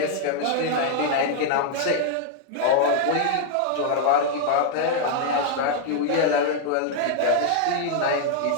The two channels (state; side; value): different; both; correlation 0.00